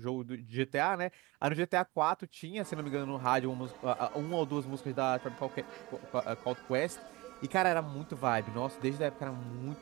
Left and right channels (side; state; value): left; quieter; 23.3 dB